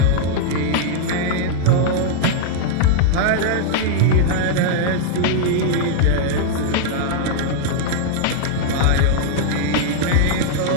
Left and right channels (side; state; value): both; different; correlation -0.01